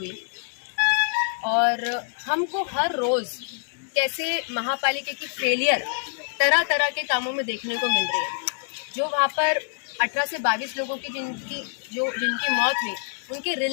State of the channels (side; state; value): right; silent; digital silence